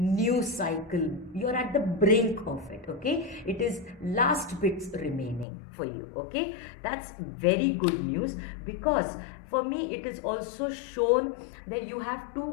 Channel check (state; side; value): drops out; right; at 5.5 s